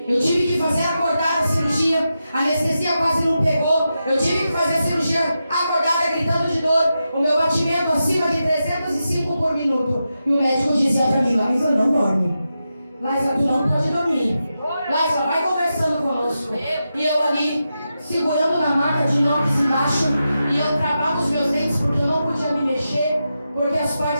Eu tive que fazer acordada a cirurgia. A anestesia quase não pegou. Eu tive que fazer a cirurgia acordada, gritando de dor. O meu batimento acima de 305 por minuto. E o médico dizia para mim, Laísa, não dorme. Laísa, tu não pode dormir. Laísa, vai conversando conosco. E eu ali, segurando na maca de inox embaixo. E eu travava os meus dentes porque eu não podia me mexer. Porque as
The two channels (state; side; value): inverted; both; correlation -0.89